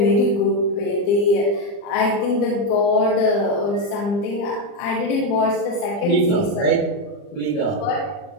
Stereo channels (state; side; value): late; right; 40 ms